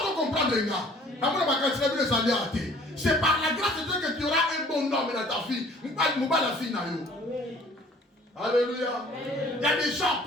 de comprendre les gars. C'est par la grâce de Dieu que tu auras un bon homme dans ta vie. Alléluia. Il y a des gens,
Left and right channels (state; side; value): normal; both; correlation 0.53